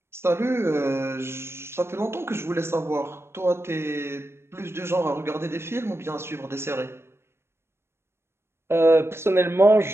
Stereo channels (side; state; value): left; late; 0.12 ms